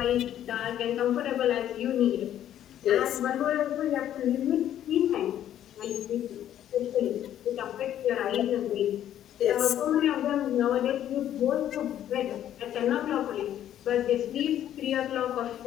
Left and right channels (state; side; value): quieter; right; 11.2 dB